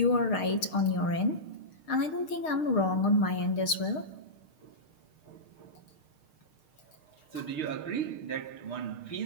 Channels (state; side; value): late; right; 6.5 ms